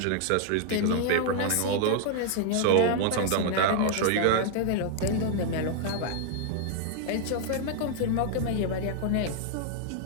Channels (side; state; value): both; different; correlation 0.00